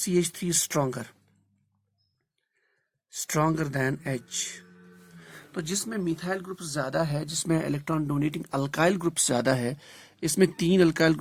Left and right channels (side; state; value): both; identical; correlation 1.00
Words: stronger than H। तो जिसमें methyl group ज्यादा है, जिसमें इलेक्ट्रॉन डोनेटिंग अल्काइल ग्रुप ज्यादा है, इसमें 3 अल्काइल